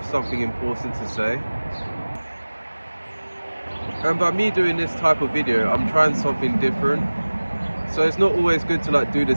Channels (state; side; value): inverted; both; correlation -1.00